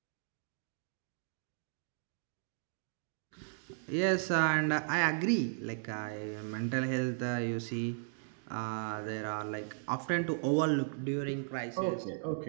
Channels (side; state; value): left; silent; digital silence